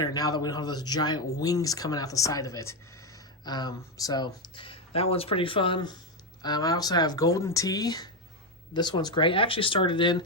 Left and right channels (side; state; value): both; normal; correlation 0.08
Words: now that we don't have those giant wings coming out the side of it. So that one's pretty fun. I also have Golden Tee. This one's great. I actually started in,